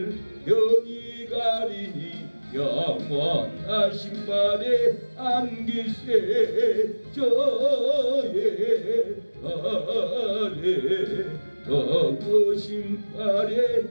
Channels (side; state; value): both; inverted; correlation -1.00